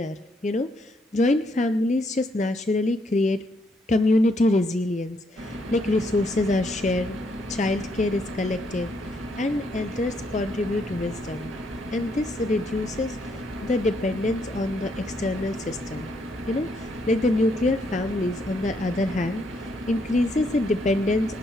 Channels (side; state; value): both; normal; correlation 0.73